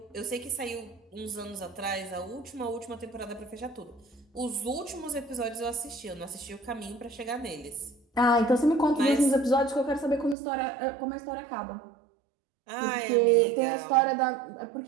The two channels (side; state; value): left; drops out; at 10.4 s